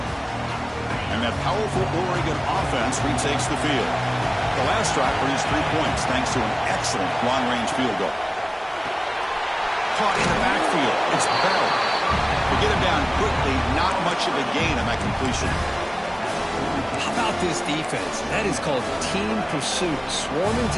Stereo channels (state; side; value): identical; both; correlation 1.00